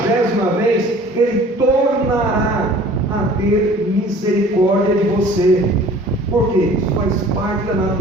vez, Ele tornará a ter misericórdia de você. Por quê? Isso faz parte da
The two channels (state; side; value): normal; both; correlation 0.48